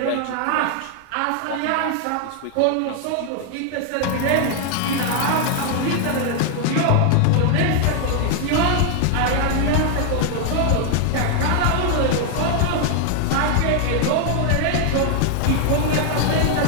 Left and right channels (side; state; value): both; different; correlation 0.00